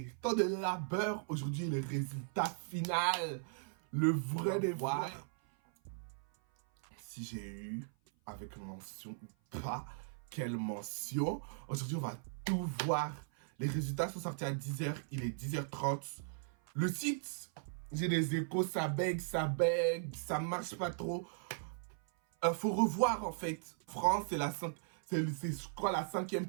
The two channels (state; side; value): silent; left; 52 dB below the other